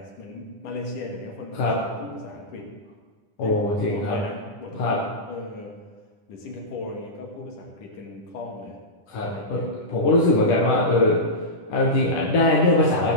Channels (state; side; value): late; right; 10 ms